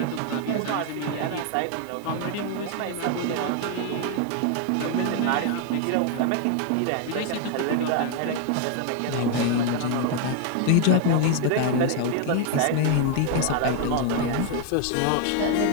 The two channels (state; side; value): different; both; correlation 0.01